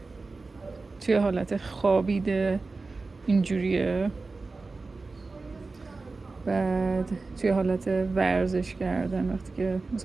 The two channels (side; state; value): left; quieter; 3.8 dB